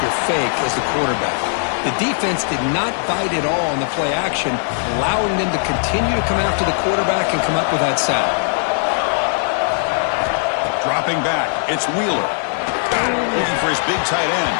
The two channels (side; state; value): right; silent; 64 dB below the other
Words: your fake as the quarterback. The defense did not bite at all on the play action, allowing them to continue to come after the quarterback and come up with that sack. Dropping back, it's Wheeler. Looking for his big tight end.